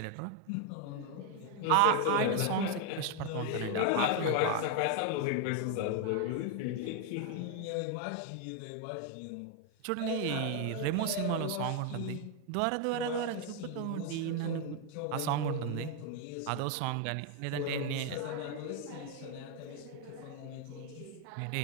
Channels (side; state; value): both; different; correlation 0.01